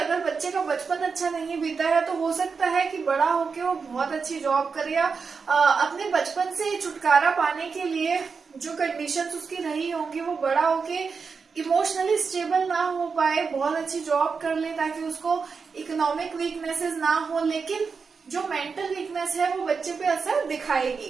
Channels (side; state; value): left; quieter; 5.2 dB